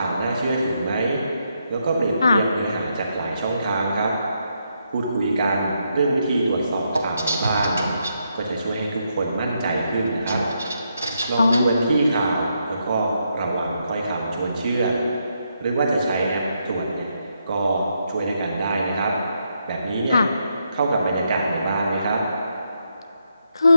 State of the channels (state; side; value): inverted; both; correlation -0.80